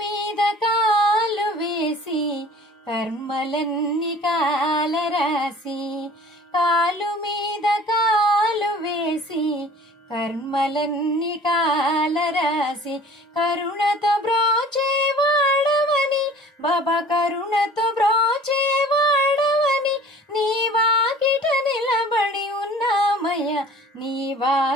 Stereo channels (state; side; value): normal; both; correlation 0.47